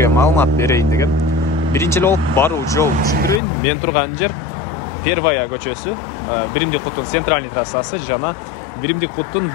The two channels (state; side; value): drops out; right; at 3.4 s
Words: маалымат берейин деген. Биринчи эле болуп баруу жол түшүндүрөйүн. Мен турган жер Первая көчөсү, Биримдик куттун центральный трассасы жана Биримдик куттун